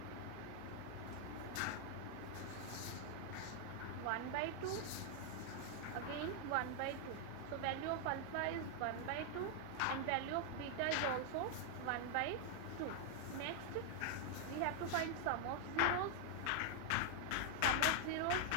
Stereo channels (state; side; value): different; both; correlation 0.00